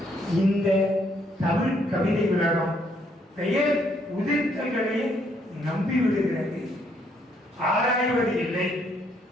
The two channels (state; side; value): normal; both; correlation 0.70